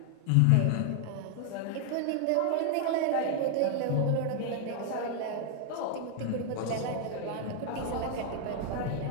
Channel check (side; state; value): both; different; correlation 0.00